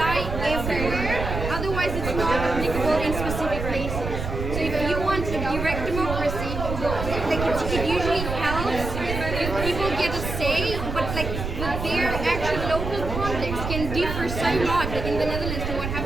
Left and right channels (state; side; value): noise; right; rumble, 5 dB below the sound